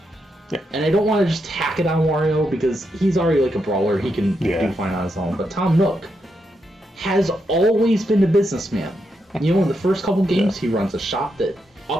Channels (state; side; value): normal; both; correlation 0.83